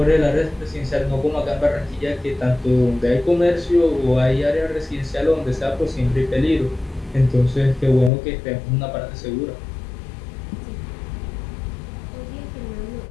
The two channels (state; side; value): drops out; right; at 8.1 s